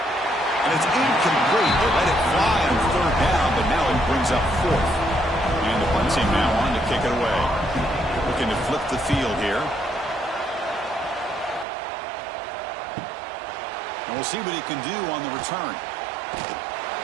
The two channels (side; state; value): left; drops out; at 11.7 s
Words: And it's incomplete. They let it fly on 3rd down, but now it brings up 4th. And the punt team now on to kick it away. Looking to flip the field here. And we'll see what he can do on the return.